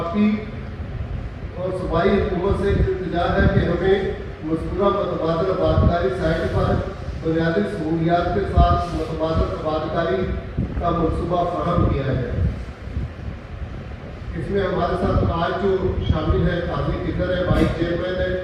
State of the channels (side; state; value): both; identical; correlation 1.00